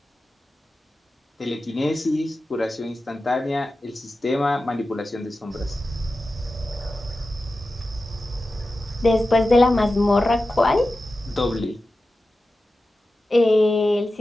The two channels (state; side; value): normal; both; correlation 0.93